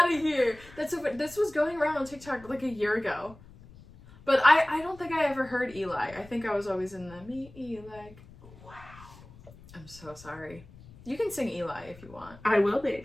of here. This was going around on TikTok like a year ago. But I don't think I ever heard Eli. I think I was always in the me, Eli. Wow. I'm so sorry. You can sing Eli if you want. I will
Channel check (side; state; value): left; noise; rumble, 21 dB below the sound